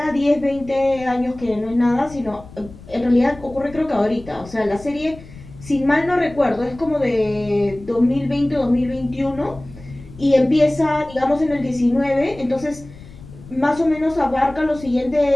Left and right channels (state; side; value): noise; left; rumble, 18 dB below the sound